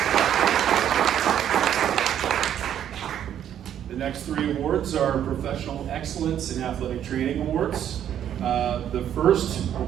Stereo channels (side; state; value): left; quieter; 10.1 dB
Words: The next three awards are Professional Excellence in Athletic Training Awards. The first